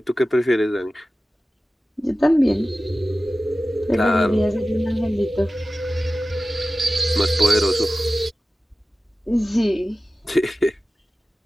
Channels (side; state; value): both; normal; correlation 0.95